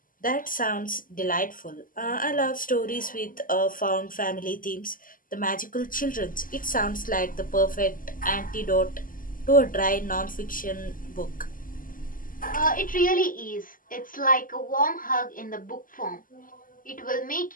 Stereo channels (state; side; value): late; right; 0.40 ms